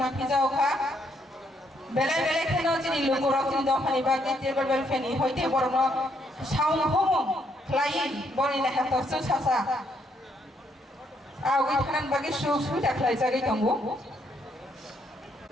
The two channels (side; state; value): both; normal; correlation 0.73